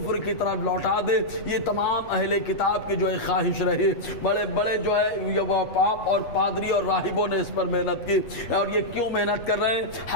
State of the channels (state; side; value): late; right; 8.0 ms